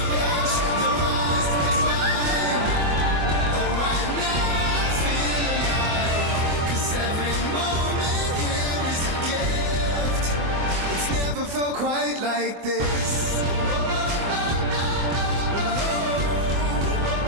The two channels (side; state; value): left; late; 24 ms